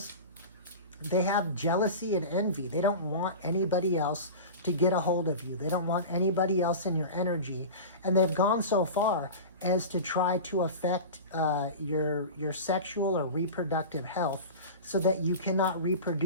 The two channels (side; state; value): both; inverted; correlation -0.30